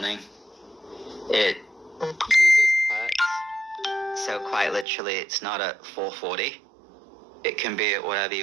It uses hertz, so quite literally it's not at 440. It can be at whatever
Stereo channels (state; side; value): drops out; left; at 4.9 s